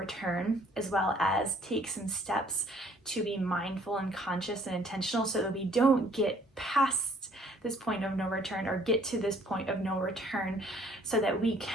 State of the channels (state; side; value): normal; both; correlation 0.60